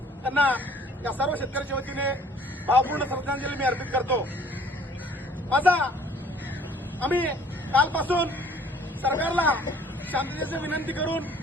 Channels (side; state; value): both; normal; correlation 0.56